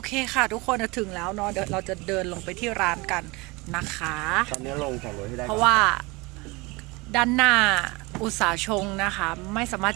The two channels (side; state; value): left; quieter; 25.1 dB